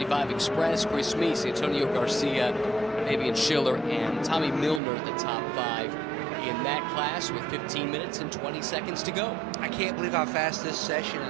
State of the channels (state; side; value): drops out; left; at 4.8 s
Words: Express. Chris Meese, Antonio Garcia, Fabian Schiller, and Tommy Milner, the top 5 in that class with 15 minutes and 20 seconds to go. I can't believe how fast this session